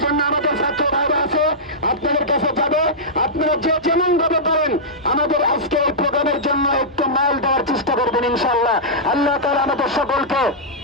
জন্য আমাদের ছাত্র ভাইরা আছে, আপনাদের কাছে যাবে। আপনারা যে যেমন ভাবে পারেন আমাদের আজকে এই প্রোগ্রামের জন্য একটু মাল দেওয়ার চেষ্টা করবেন ইনশাআল্লাহ। আল্লাহ তাআলা আমাদের সকলকে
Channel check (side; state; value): both; normal; correlation -0.12